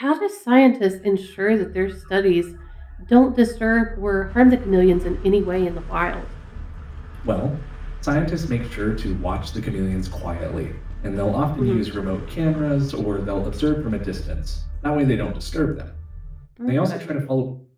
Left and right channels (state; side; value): identical; both; correlation 1.00